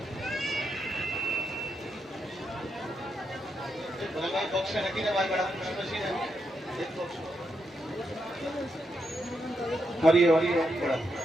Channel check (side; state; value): both; normal; correlation 0.82